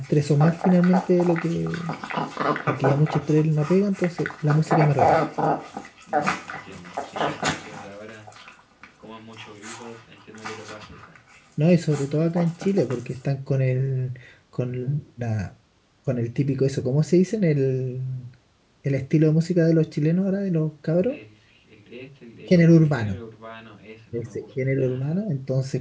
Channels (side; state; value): both; identical; correlation 1.00